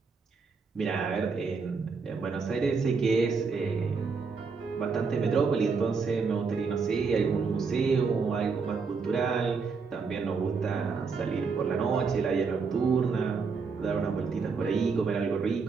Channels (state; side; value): quieter; left; 5.0 dB